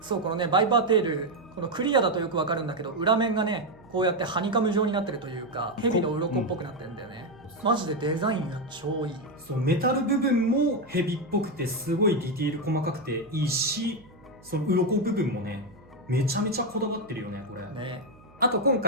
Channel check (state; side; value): noise; right; hum, 25 dB below the sound